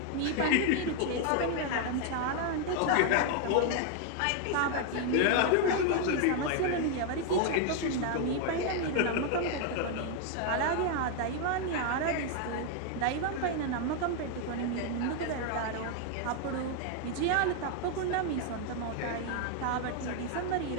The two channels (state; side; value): different; both; correlation 0.00